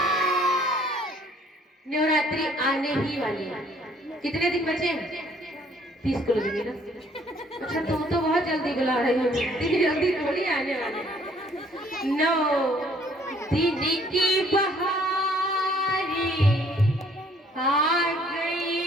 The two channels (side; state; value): both; normal; correlation 0.61